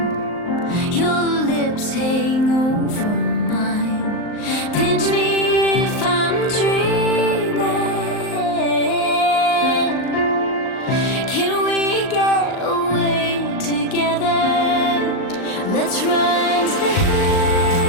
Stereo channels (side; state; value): right; late; 38 ms